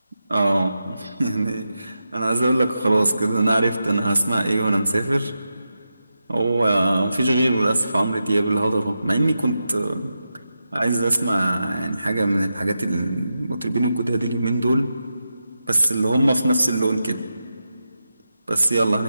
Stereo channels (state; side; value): inverted; both; correlation -0.89